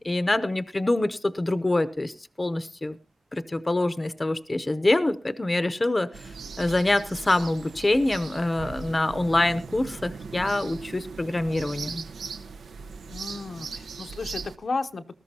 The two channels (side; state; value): both; normal; correlation 0.98